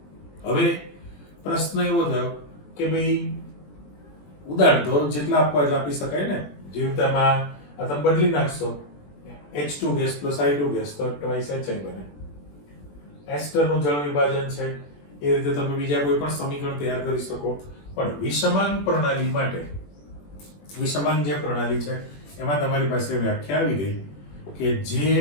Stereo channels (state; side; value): late; right; 21 ms